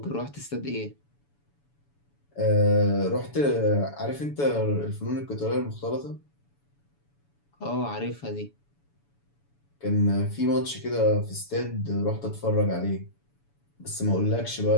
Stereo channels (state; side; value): late; right; 7.0 ms